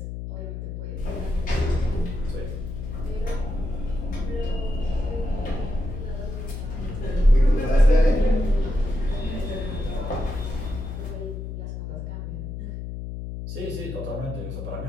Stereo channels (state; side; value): noise; left; hum, 6 dB below the sound